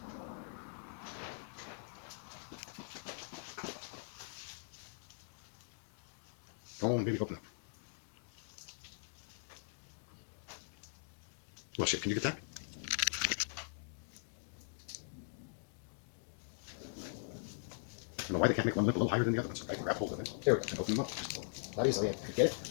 Come on, baby, open up. Well, shit, can you get that? I don't know why they can't make one lip a little higher than the other one, so I can grab hold of it. There we go. And open them up. Not easily. I could get it.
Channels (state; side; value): silent; right; digital silence